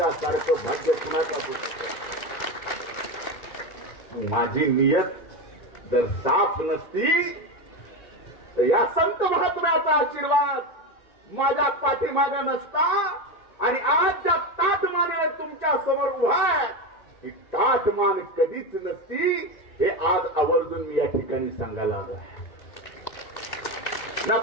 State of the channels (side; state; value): right; late; 1.9 ms